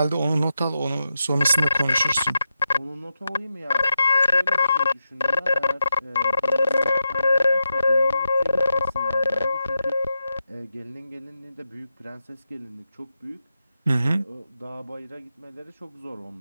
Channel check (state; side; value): inverted; both; correlation -0.87